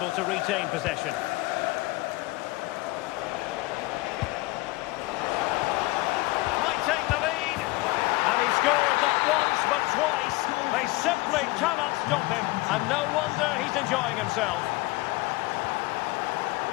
to retain possession. Might take the lead. And he scored not once but twice. They simply cannot stop him. And no wonder he's enjoying himself.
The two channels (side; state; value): right; quieter; 22.6 dB